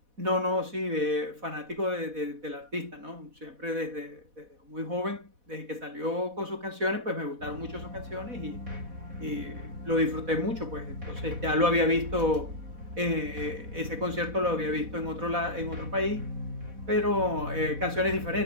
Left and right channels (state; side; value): late; left; 4.1 ms